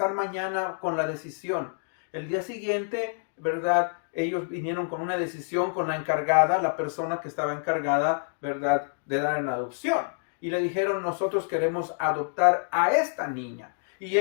mañana con la decisión. El día siguiente, ¿verdad?, ellos vinieron con una decisión con la encargada, la persona que estaba encargada, ¿verdad?, de dar en adopción. Y le dijeron, nosotros queremos adoptar a esta niña. Y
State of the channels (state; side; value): silent; right; digital silence